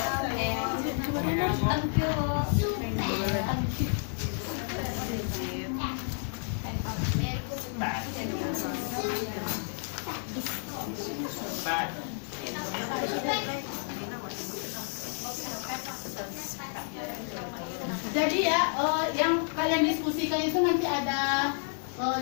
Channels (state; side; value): silent; right; 57 dB below the other